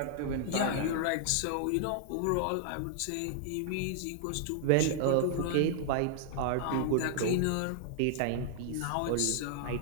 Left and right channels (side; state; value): both; different; correlation -0.01